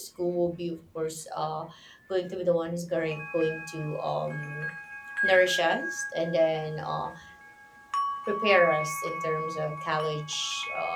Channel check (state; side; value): identical; both; correlation 1.00